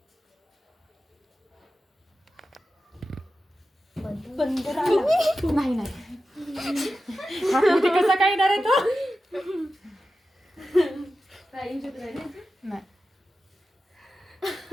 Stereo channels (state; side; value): normal; both; correlation 0.92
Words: नाही नाही कसा काय येणार आहे तो नाही